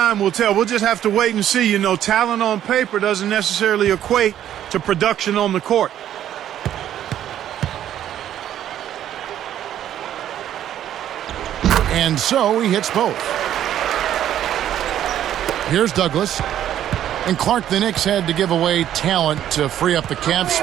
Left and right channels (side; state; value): left; quieter; 11.2 dB